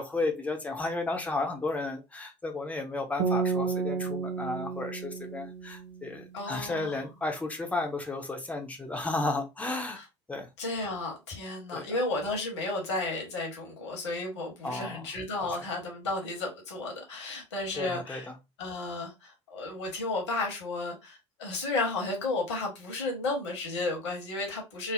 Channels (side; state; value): both; normal; correlation 0.41